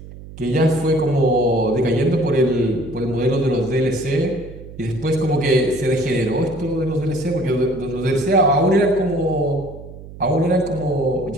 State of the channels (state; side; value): noise; right; hum, 15 dB below the sound